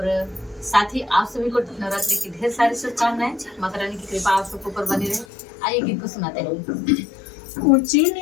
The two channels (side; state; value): right; drops out; at 5.2 s